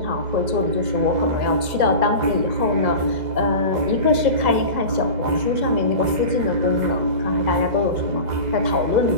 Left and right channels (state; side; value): late; left; 2.0 ms